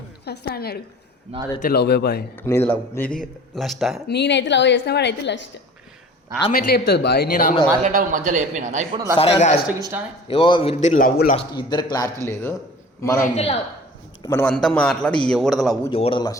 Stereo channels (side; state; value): both; normal; correlation 0.44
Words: ఫస్ట్ అన్నాడు. నాదైతే లవ్ బాయ్. నీది లవ్, నీది లస్టా? నేనైతే లవ్ చేసిన వాడైతే లస్ట్. ఆమె ఎట్లా చెప్తుంది బాయ్? నేను ఆమె మాట్లాడే మధ్యలో చెప్పినా ఇప్పుడు ఏవో ఇద్దరు లవ్ లస్ట్, ఇద్దరు క్లారిటీ లేదు. మనం అంతా మాట్లాడి ఎవరిది లవ్ ఎవరిది